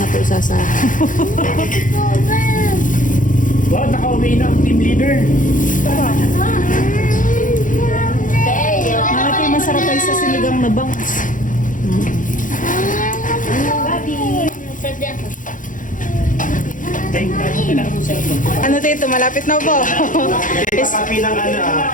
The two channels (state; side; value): late; right; 0.38 ms